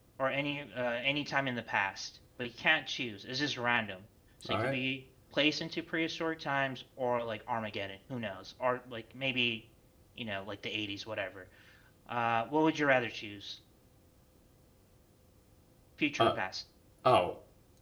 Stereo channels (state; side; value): identical; both; correlation 1.00